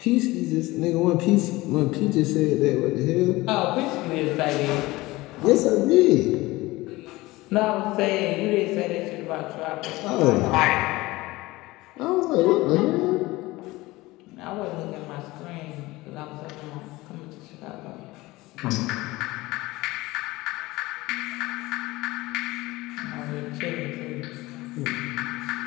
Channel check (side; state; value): right; quieter; 20.1 dB